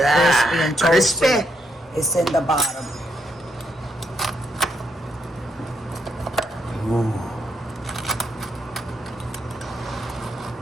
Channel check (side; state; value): both; normal; correlation 0.78